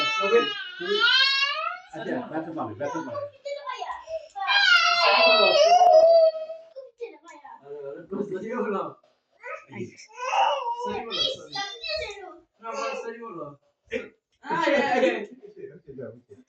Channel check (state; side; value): identical; both; correlation 1.00